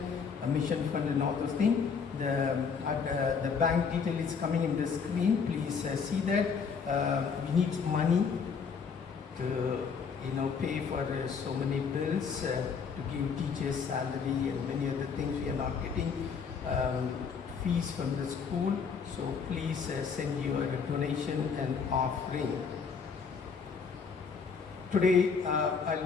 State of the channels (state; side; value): quieter; right; 5.9 dB